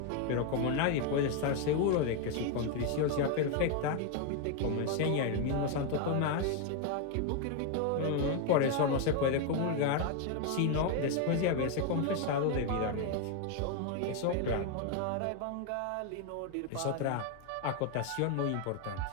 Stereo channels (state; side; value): different; both; correlation 0.01